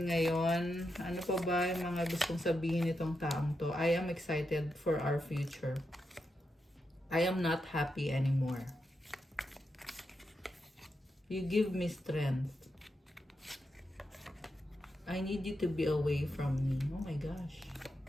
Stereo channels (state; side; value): normal; both; correlation 0.86